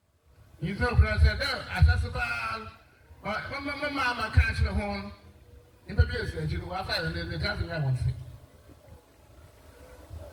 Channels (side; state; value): both; identical; correlation 1.00